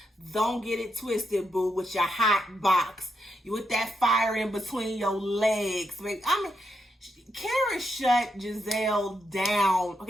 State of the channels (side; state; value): both; normal; correlation 0.82